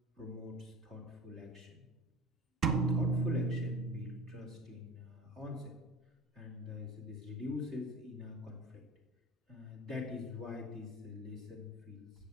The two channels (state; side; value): normal; both; correlation 0.34